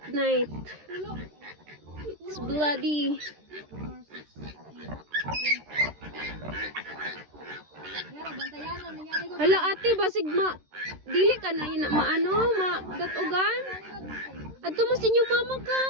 night. It's bloody. Hala ate, basig dili ka na datugan. Adto mo sinyo mama ka.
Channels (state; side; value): late; left; 13 ms